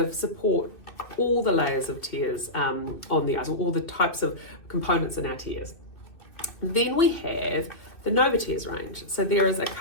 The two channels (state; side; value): late; right; 2.6 ms